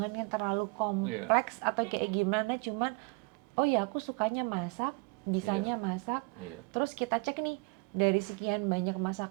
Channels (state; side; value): quieter; left; 29.3 dB